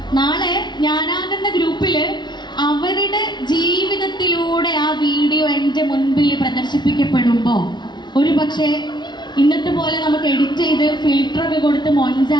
നാളെ ഞാനാകുന്ന ഗ്രൂപ്പിൽ അവരുടെ ജീവിതത്തിലൂടെ ആ വീഡിയോ എൻ്റെ മുൻപിൽ പ്രദർശിപ്പിക്കപ്പെടുമ്പോൾ ഒരു പക്ഷേ ഇന്നത്തെ പോലെ നമുക്ക് എഡിറ്റ് ചെയ്ത് ഫിൽറ്ററൊക്കെ കൊടുത്ത്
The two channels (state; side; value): late; right; 0.21 ms